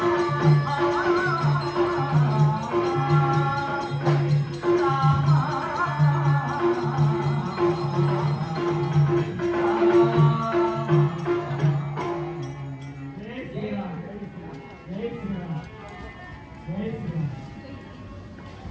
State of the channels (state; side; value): identical; both; correlation 1.00